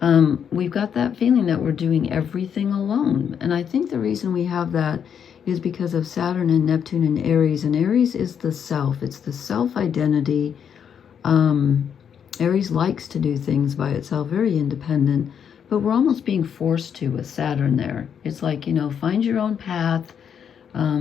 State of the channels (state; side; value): quieter; right; 7.9 dB